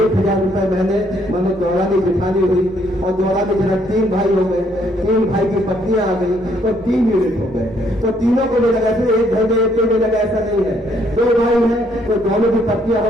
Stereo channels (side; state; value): both; normal; correlation 0.68